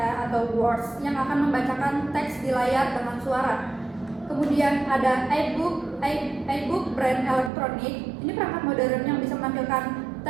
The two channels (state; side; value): drops out; left; at 7.5 s